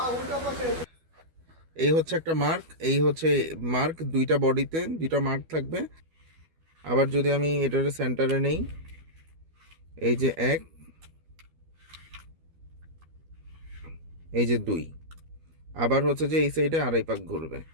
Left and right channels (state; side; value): late; left; 12 ms